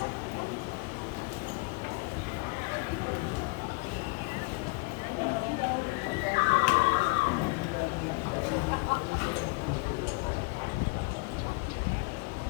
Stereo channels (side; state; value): right; quieter; 29.0 dB